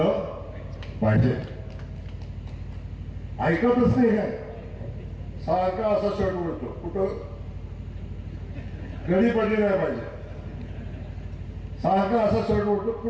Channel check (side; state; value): both; identical; correlation 1.00